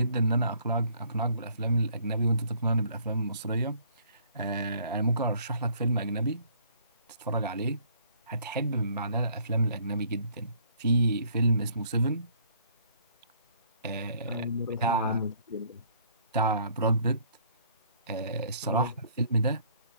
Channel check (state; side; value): inverted; both; correlation -0.61